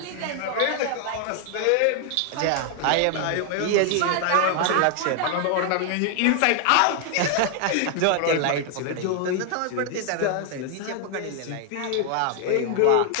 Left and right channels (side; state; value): both; different; correlation 0.00